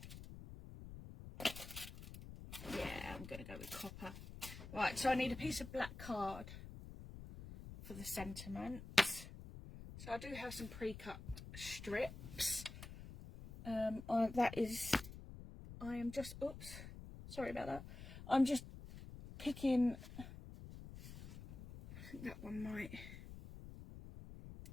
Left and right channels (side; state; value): left; noise; rumble, 12 dB below the sound